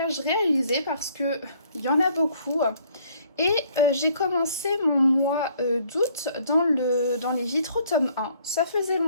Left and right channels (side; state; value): both; inverted; correlation -0.62